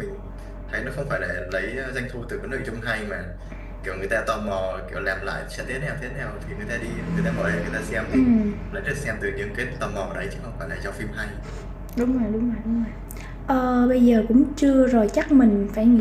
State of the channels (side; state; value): both; identical; correlation 1.00